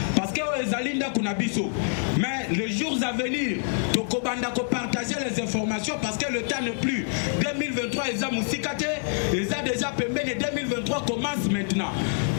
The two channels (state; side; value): silent; right; digital silence